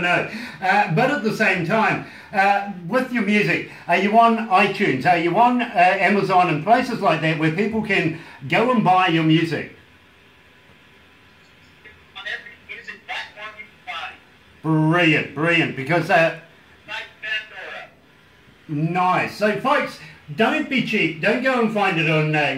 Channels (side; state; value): both; identical; correlation 1.00